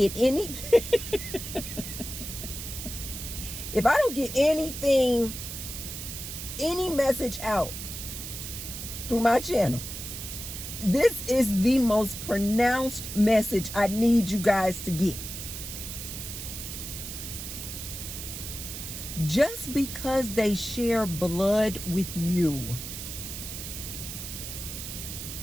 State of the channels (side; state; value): right; noise; hiss, 8 dB below the sound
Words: anything, if I don't get anything, any message out through my channel, this is the most pronounced message I need you guys to get. Just because they share blood with you